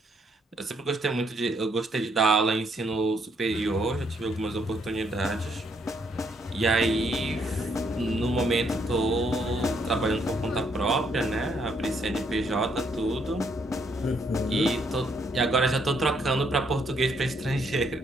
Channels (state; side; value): normal; both; correlation 0.72